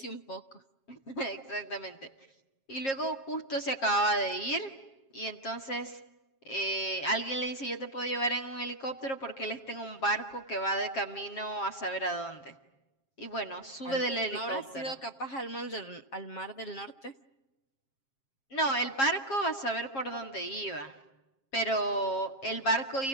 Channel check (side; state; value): right; late; 7.4 ms